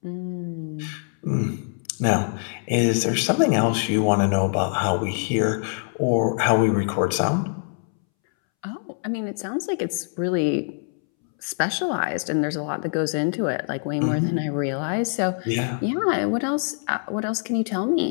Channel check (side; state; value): right; silent; 63 dB below the other